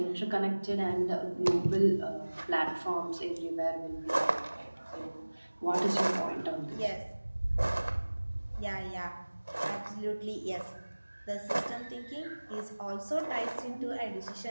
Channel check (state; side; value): inverted; both; correlation -1.00